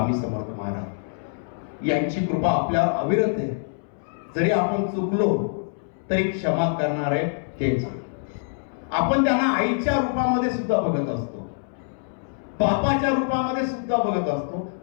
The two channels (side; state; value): right; silent; 62 dB below the other